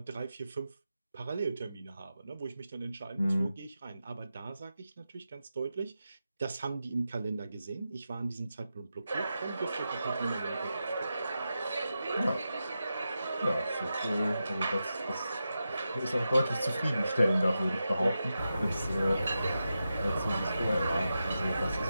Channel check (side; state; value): both; inverted; correlation -0.90